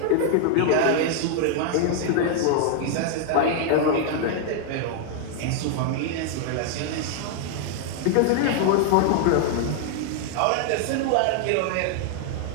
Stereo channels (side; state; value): both; different; correlation 0.00